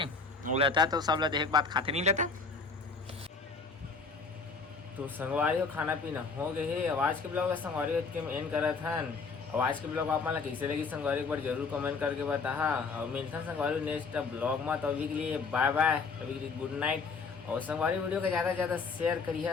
वो लेता तो सब ला देख बात खाते नहीं लेता। तो संगवारी हो खाना पीना हो गए है। आवाज के ब्लॉग संगवारी के एंड करत हन। आवाज के ब्लॉग आप मन कैसे लगी संगवारी एक बार जरूर कमेंट करके बता। और मिलता संगवारी नेक्स्ट ब्लॉग में। तो अभी के लिए बाय बाय, अभी के लिए गुड नाइट। और संगवारी वीडियो को ज़्यादा से ज़्यादा शेयर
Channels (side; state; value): right; quieter; 4.7 dB